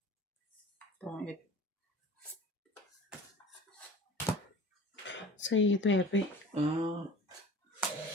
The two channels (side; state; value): both; normal; correlation 0.41